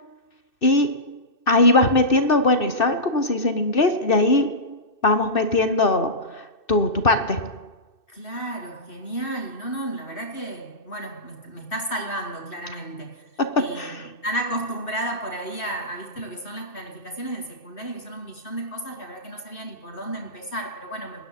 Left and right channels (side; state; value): right; late; 2.6 ms